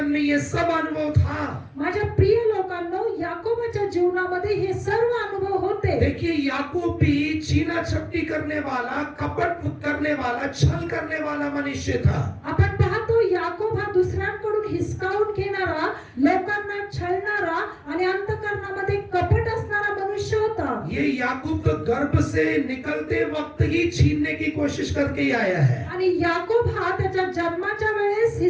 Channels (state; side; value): identical; both; correlation 1.00